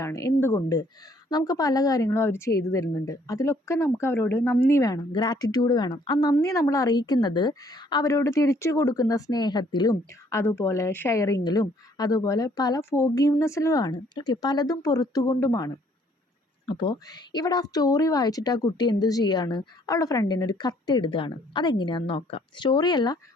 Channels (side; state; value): both; normal; correlation 0.63